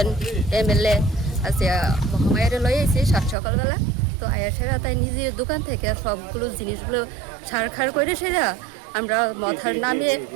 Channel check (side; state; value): left; drops out; at 3.4 s